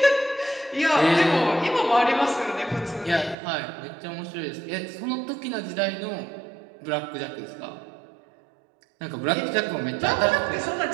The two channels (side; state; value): left; drops out; at 3.4 s